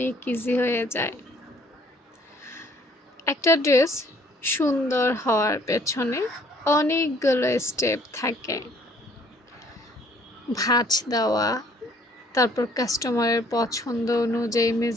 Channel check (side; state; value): both; normal; correlation 0.60